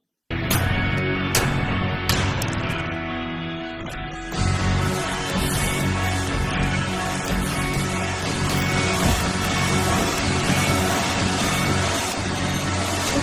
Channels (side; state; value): both; identical; correlation 1.00